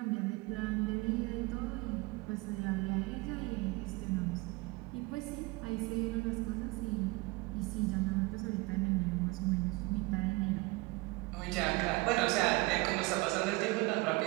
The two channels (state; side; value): quieter; left; 23.9 dB